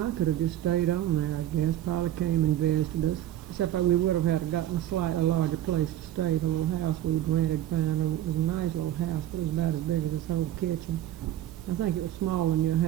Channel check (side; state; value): left; quieter; 12.5 dB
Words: could have just stayed on there, I guess. Polly came and visited us. Except we would have had to gotten a slightly larger place to stay. The little house we'd rented found it was a nice little house, but it was about as big as this whole kitchen. I think it was smaller than your